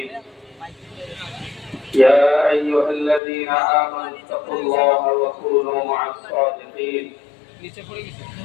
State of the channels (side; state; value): right; drops out; at 3.2 s